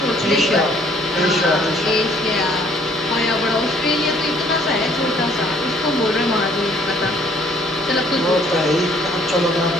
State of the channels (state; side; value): normal; both; correlation 0.60